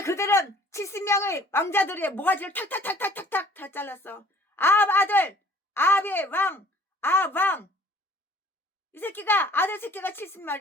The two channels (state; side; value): normal; both; correlation 0.54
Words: 그들은 70명의 왕자들의 모가지를 탁탁 다 잘랐어. 아합의 왕. 이 새끼가 아들 새끼가